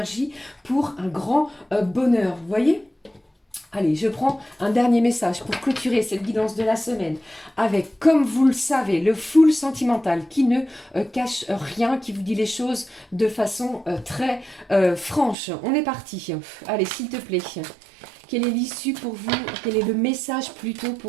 pour un grand bonheur. Vous voyez ? Allez, je prends un dernier message pour clôturer cette guidance de la semaine avec, comme vous le savez, le full sentimental qui ne cache rien, qui vous dit les choses de façon très franche. On est parti. Allez, s'il te plaît. Quelle est l'issue pour vous? Quel est le message plutôt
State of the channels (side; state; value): left; drops out; at 15.4 s